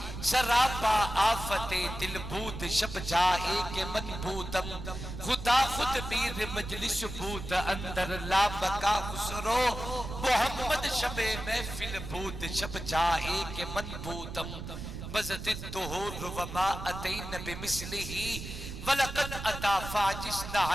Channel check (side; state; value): right; noise; rumble, 8 dB below the sound